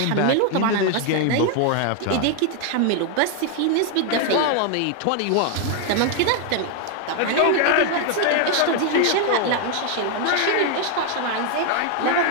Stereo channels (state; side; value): different; both; correlation 0.01